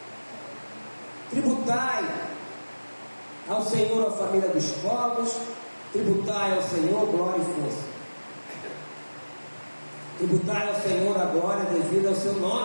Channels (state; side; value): inverted; both; correlation -1.00